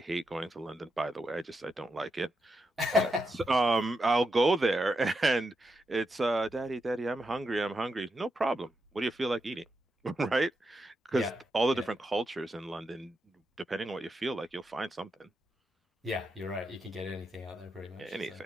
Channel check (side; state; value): both; normal; correlation 0.84